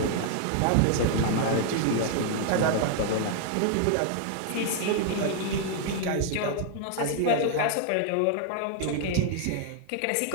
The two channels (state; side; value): different; both; correlation 0.00